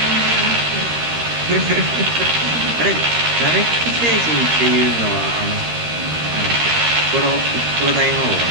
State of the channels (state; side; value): late; left; 13 ms